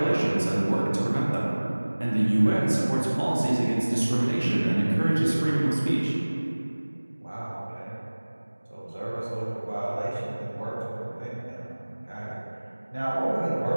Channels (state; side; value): inverted; both; correlation -1.00